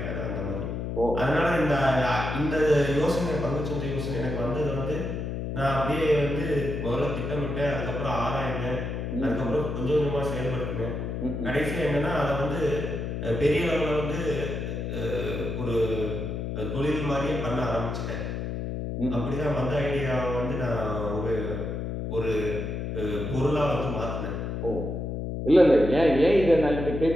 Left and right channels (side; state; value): left; noise; hum, 4 dB below the sound